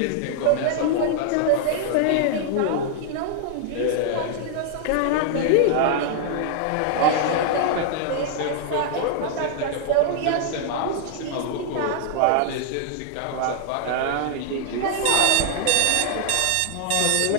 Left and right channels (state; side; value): different; both; correlation -0.01